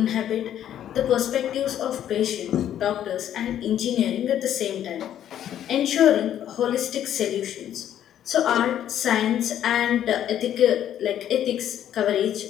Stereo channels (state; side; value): quieter; right; 10.7 dB